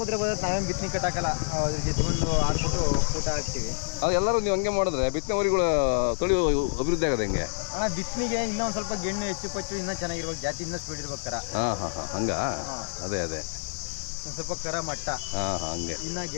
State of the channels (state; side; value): silent; right; digital silence